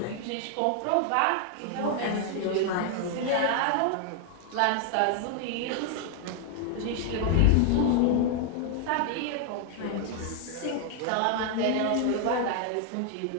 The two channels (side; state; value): both; different; correlation 0.00